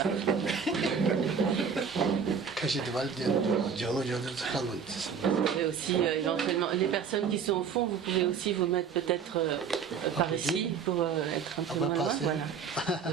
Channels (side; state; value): left; quieter; 6.5 dB